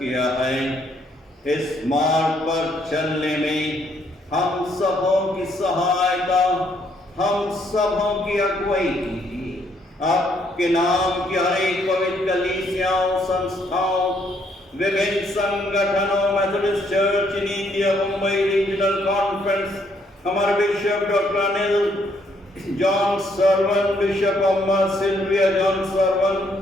है। इस मार्ग पर चलने में हम सबों की सहायता, हम सबों की अगुवाई कीजिए। आपके नाम की हर एक पवित्र कलीसियाओं, संस्थाओं, विभिन्न संगठनों, Methodist church in India, Mumbai regional conference, हमारे bishop doctor Anil John Sarvan, bishop Amma Sylvia John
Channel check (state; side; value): normal; both; correlation 0.70